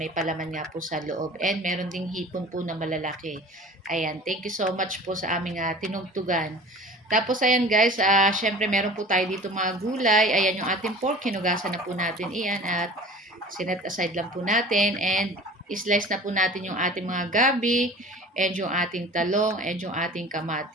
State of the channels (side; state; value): both; normal; correlation 0.41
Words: palaman nga po sa loob. And meron ding hipon po na malalaki. Ayan, thank you so much po sa aming tinugtugan. Tapos ayan guys, syempre meron po tayo dito mga gulay. Ayan yung ating pork, hinugasan na po natin iyan at sinet aside lang po natin. And slice na po natin yung ating mga gabi and yung ating talong and yung ating